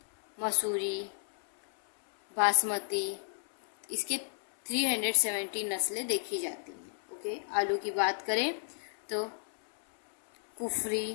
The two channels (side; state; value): right; silent; 56 dB below the other